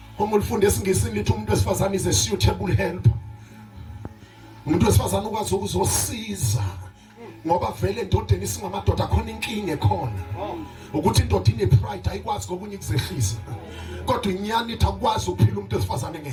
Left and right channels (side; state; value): both; identical; correlation 1.00